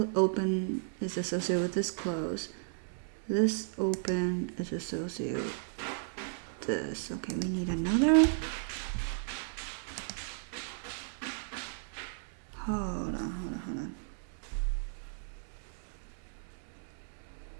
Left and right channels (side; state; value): left; silent; digital silence